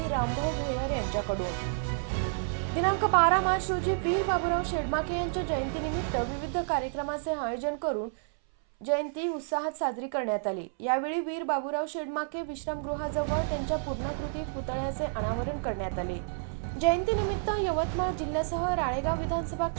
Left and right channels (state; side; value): silent; left; 58 dB below the other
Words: रामभाऊ भोयर यांच्याकडून। दिनांक 12 मार्च रोजी वीर बाबूराव शेडमाके यांच्या जयंतीनिमित्त विविध कार्यक्रमाचे आयोजन करून जयंती उत्साहात साजरी करण्यात आली। यावेळी वीर बाबूराव शेडमाके विश्रामगृहाजवळ त्यांच्या पूर्णाकृती पुतळ्याचे अनावरण करण्यात आले। जयंतीनिमित्त यवतमाळ जिल्ह्यासह राळेगाव विधानसभा